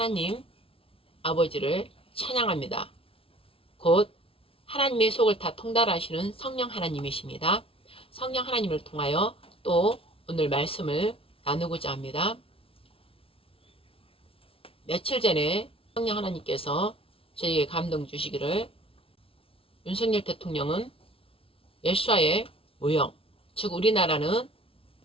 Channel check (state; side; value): late; right; 0.26 ms